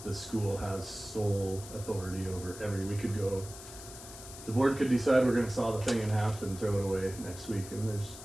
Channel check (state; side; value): noise; left; hiss, 14 dB below the sound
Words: the school has sole authority over we could go, the board could decide we're gonna saw the thing in half and throw it away next week, and there's